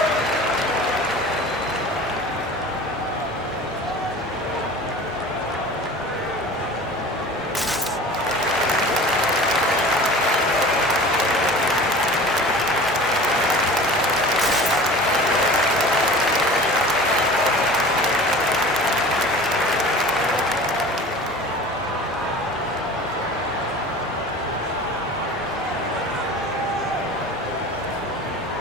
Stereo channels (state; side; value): normal; both; correlation 0.39